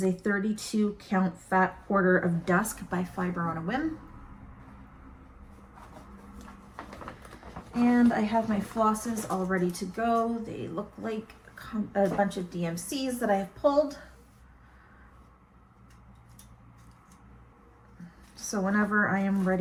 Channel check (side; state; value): both; identical; correlation 1.00